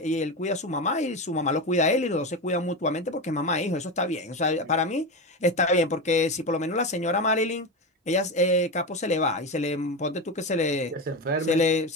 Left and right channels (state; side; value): normal; both; correlation 0.18